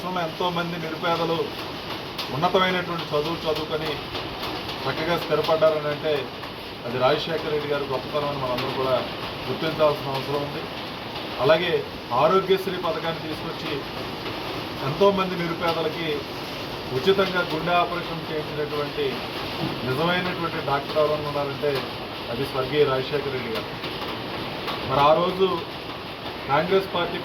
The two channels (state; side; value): identical; both; correlation 1.00